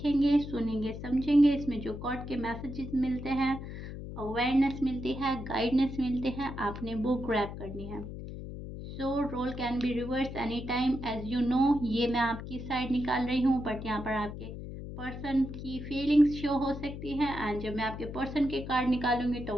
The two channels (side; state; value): left; noise; hum, 9 dB below the sound